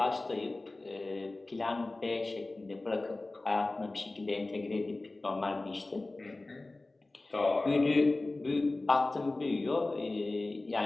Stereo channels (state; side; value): quieter; right; 3.0 dB